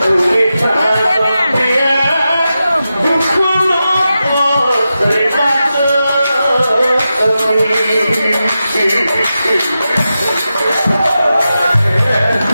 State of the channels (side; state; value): both; inverted; correlation -0.91